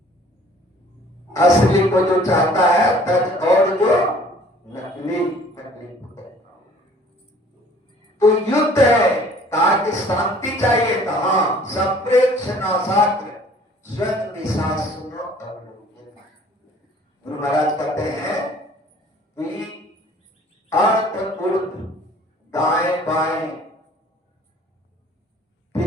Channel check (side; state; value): both; normal; correlation 0.53